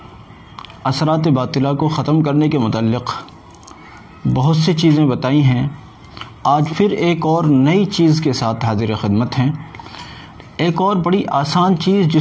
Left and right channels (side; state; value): both; identical; correlation 1.00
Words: اثرات باطلہ کو ختم کرنے کے متعلق بہت سی چیزیں بتائی ہیں۔ آج پھر ایک اور نئی چیز کے ساتھ حاضر خدمت ہیں، ایک اور بڑی آسان چیز